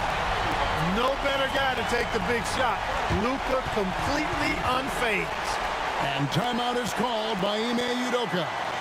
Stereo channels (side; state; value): both; identical; correlation 1.00